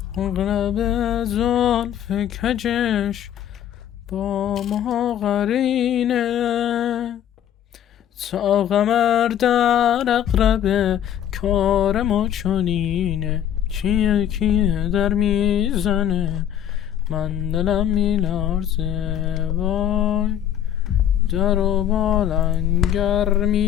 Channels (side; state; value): right; quieter; 10.3 dB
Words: اغرب زلف کجش با ما قرینه. تا قمر در اقرب کار ما چنینه، کیه در میزنه من دلم میلرزه، وای در و بالنگر